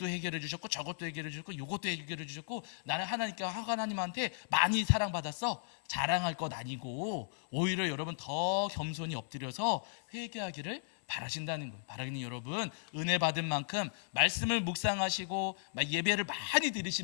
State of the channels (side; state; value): right; silent; digital silence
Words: 해결해 주셨고 저것도 해결해 주셨고 이것도 해결해 주셨고 나는 하나님한테 많이 사랑받았어, 자랑할 것 아니고 오히려 여러분 더 겸손히 엎드려서 회개하기를 바라신다는 거예요. 바라기는 여러분, 은혜 받은 만큼 말씀을 묵상하시고 예배를 많이